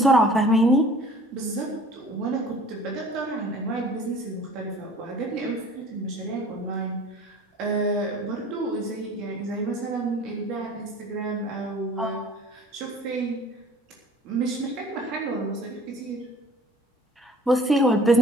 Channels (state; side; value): normal; both; correlation 0.49